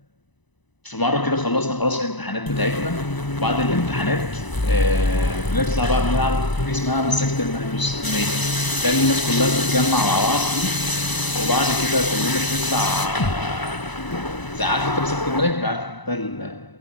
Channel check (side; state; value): right; late; 1.0 ms